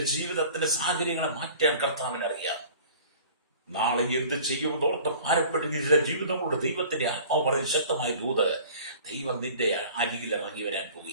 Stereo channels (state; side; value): inverted; both; correlation -0.46